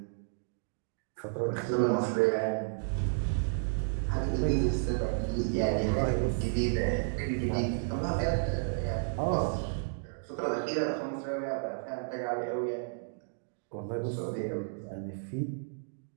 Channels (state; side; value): silent; left; digital silence